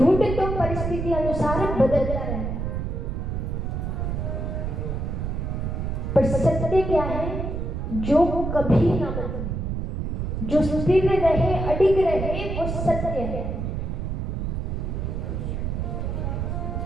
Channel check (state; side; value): noise; right; rumble, 2 dB below the sound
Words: तो परिस्थिति अनुसार बदलता रहता है, पर सत्य क्या है? जो कभी ना बदले, जो स्थिर रहे, अडिग रहे, वो सत्य है।